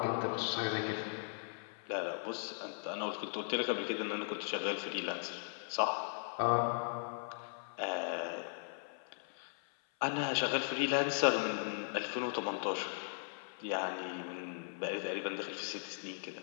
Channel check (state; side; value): silent; right; 52 dB below the other